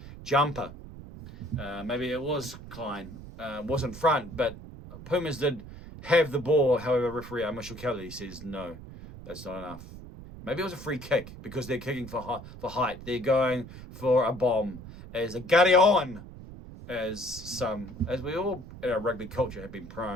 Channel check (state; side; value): noise; right; rumble, 14 dB below the sound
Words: jumper. Maybe it was Klein. Wasn't front, but Pumas did have the ball. However, referee Kelly says no, that's not enough. Maybe it was a free kick because they're kicking for height. They're going for a bomb as a gutty on, as we all in our rugby culture have been